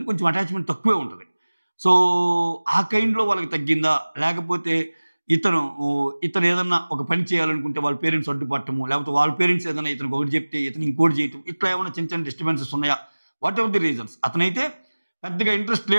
కొంచెం అటాచ్మెంట్ తక్కువే ఉంటుంది. సో ఆ కైండ్లో వాళ్ళకి తగ్గిందా, లేకపోతే ఇతను ఏదన్నా ఒక పని చేయాలనుకుంటే వాళ్ళ పేరెంట్స్ అడ్డుపట్టము, లేకపోతే వాళ్ళ పేరెంట్స్ ఏదైనా ఇతనికి ఒకటి చెప్తే ఇతను ఇంకోటి చేయటం, ఇట్లా ఏమైనా చిన్న చిన్న డిస్టర్బెన్సెస్ ఉన్నాయా, వాట్ ఎవర్ ది రీజన్స్. అతనైతే పెద్దగా ఇంట్రెస్ట్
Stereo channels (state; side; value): inverted; both; correlation -1.00